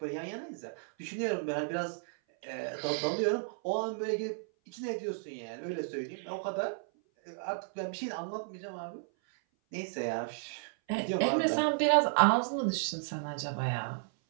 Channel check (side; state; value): left; silent; 56 dB below the other